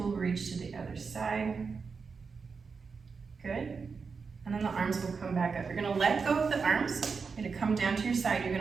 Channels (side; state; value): left; quieter; 5.2 dB